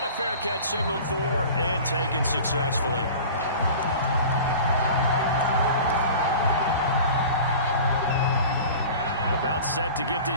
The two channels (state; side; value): inverted; both; correlation -0.39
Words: a fair catch signaled for and taken successfully. About set to get